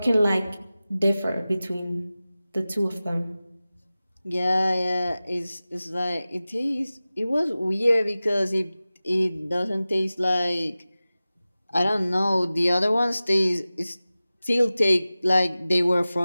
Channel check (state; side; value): inverted; both; correlation -0.96